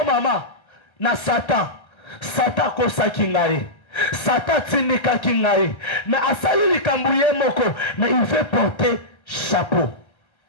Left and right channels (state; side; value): late; right; 1.3 ms